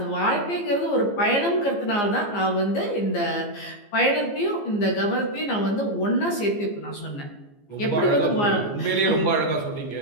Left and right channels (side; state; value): right; late; 15 ms